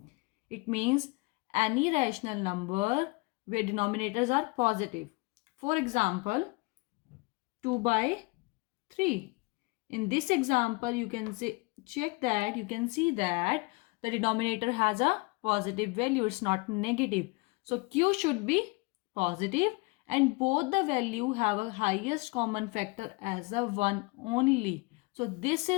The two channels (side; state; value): right; quieter; 26.3 dB